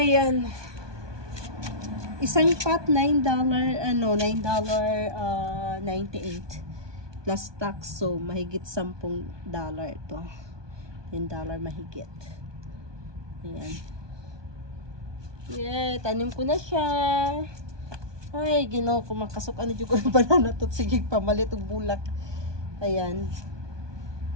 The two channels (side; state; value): left; late; 1.2 ms